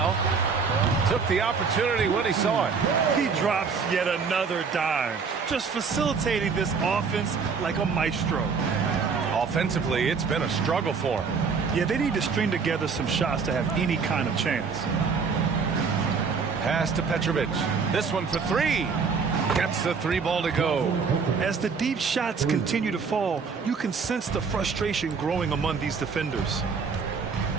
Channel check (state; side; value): quieter; left; 5.4 dB